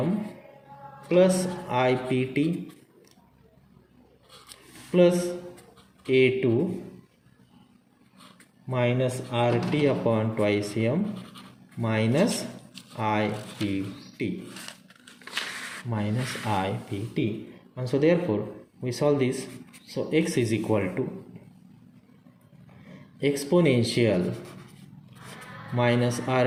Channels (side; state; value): both; identical; correlation 1.00